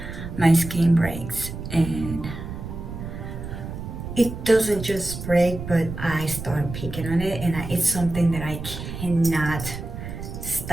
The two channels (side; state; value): right; noise; rumble, 8 dB below the sound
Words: my skin breaks, and it doesn't just break, but I start picking on it, and it's something that I cannot